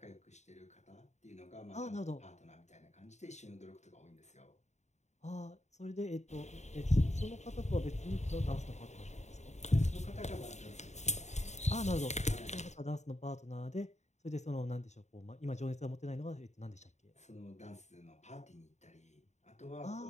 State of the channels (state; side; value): late; right; 0.33 ms